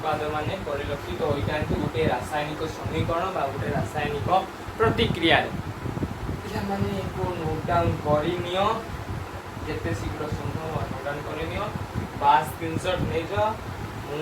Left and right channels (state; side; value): identical; both; correlation 1.00